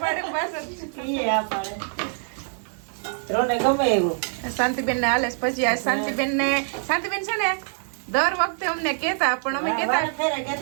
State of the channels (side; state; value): left; silent; 56 dB below the other